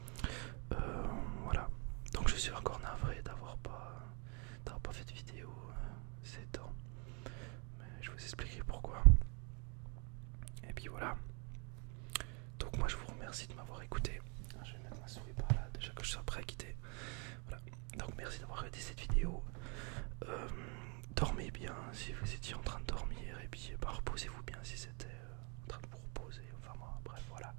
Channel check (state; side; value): quieter; left; 34.2 dB